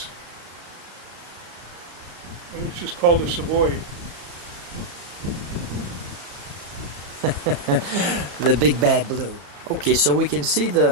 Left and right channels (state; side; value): late; left; 35 ms